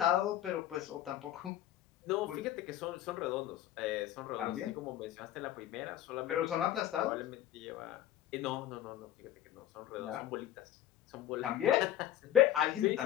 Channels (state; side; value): quieter; right; 12.5 dB